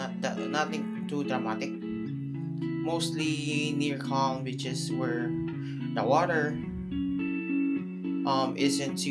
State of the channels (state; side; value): identical; both; correlation 1.00